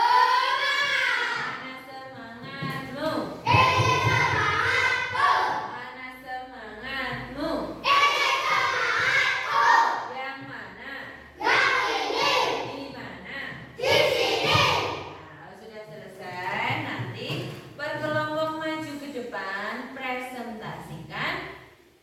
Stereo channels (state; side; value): identical; both; correlation 1.00